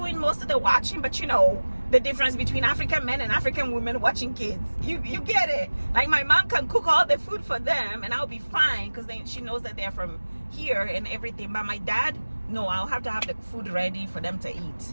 most of the watching, but you know the difference between African men and African women watching kids, you get it. Like my mom can cook all the food for them and I'll be fine, because she knows that they're from here and everything. But my dad, no, I'll have to have the food ready for them to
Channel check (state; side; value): inverted; both; correlation -1.00